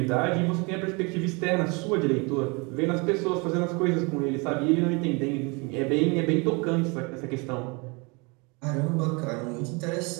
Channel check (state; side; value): quieter; left; 29.4 dB